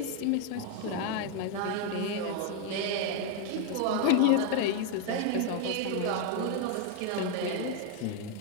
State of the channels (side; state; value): both; different; correlation 0.01